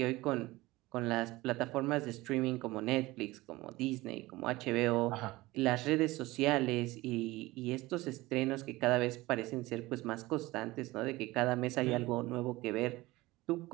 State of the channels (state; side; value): quieter; left; 19.7 dB